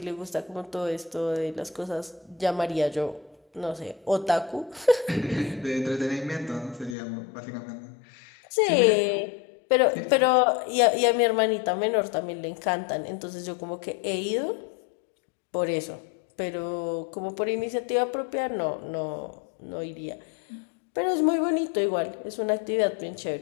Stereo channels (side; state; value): right; drops out; at 7.0 s